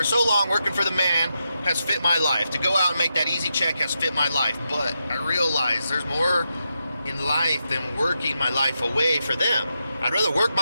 so long, working for the man has fit my life. To go out and make that easy check has fit my life. But I realize there's more in life than working my life away for them. I'd rather work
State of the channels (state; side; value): inverted; both; correlation -0.86